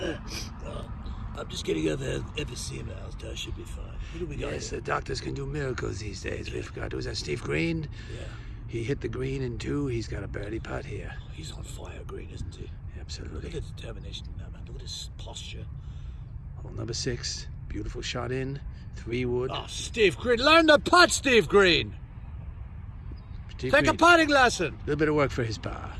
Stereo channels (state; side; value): identical; both; correlation 1.00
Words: I'm just getting over emphysema. I should be fine. What do we got Yes, here? the doctors can do miracles these days. We forgot. Was that Steve Green? Yeah. He hit the green in 2. He's got a birdie putt here. He's on fire, Green, isn't he? Look Absolutely. at the determination in that man. Look at his posture. Hole number 6. Beautiful shot in. 3 wood. Oh, Steve Green. Learn the putt, Steve Green. Steve Take a Green. putting lesson. A little bit of work for his par.